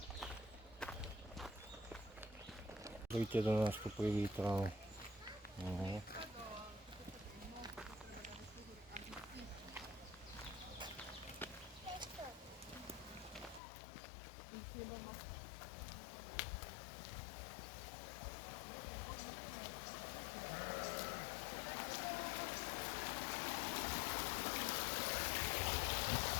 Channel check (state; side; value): drops out; right; at 13.6 s